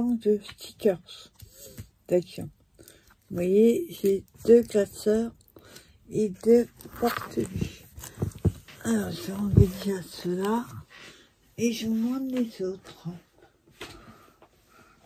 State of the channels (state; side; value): identical; both; correlation 1.00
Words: stickers d'action. Vous voyez, j'ai 2 classeurs et 2 porte-buts. Alors, je vais enlever déjà ceux-là et je vous montre les autres.